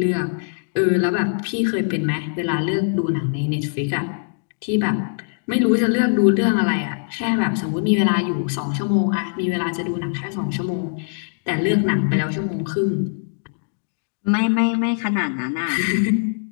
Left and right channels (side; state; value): right; silent; digital silence